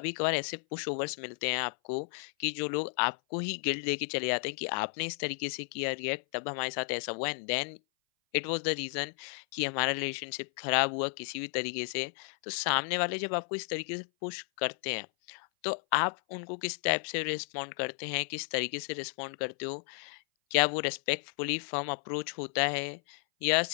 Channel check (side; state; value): right; silent; 56 dB below the other